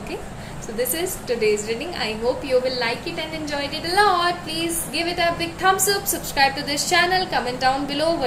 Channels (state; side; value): identical; both; correlation 1.00